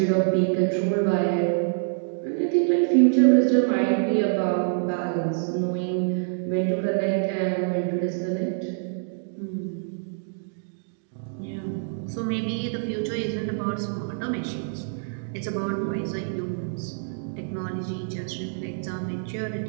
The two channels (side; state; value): left; silent; digital silence